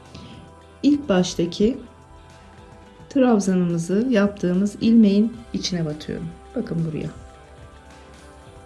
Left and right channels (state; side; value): identical; both; correlation 1.00